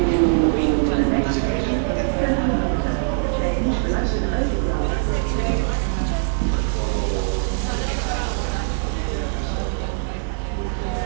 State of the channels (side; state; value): left; silent; 64 dB below the other